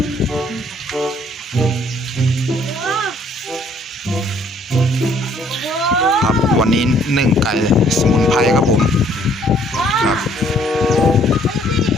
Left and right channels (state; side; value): normal; both; correlation 0.62